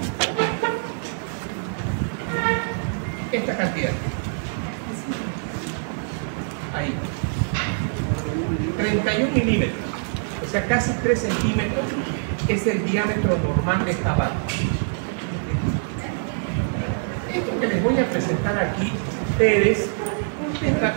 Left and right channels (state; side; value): silent; left; 62 dB below the other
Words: esta cantidad. Ahí. 31 milímetros, o sea, casi 3 centímetros es el diámetro normal de esta válvula. Esto que les voy a presentar aquí, ustedes,